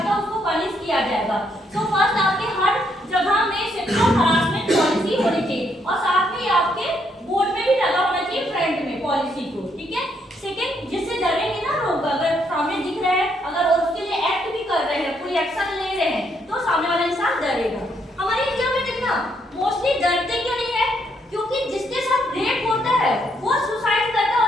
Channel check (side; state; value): both; normal; correlation 0.74